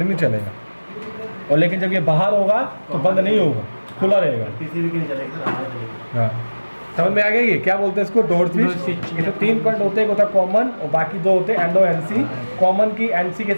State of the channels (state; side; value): inverted; both; correlation -1.00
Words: नहीं चलेगा। और लेकिन जब ये बाहर होगा तो बंद नहीं होगा, खुला रहेगा, PCB की नहीं चलेगा। हाँ समझ में आ गया। ये क्या बोलते हैं इसको, डोर स्विच। इसमें 3 पॉइंट होते हैं, एक होता है कॉमन और बाकी 2 होते हैं NO NC। कॉमन की NC के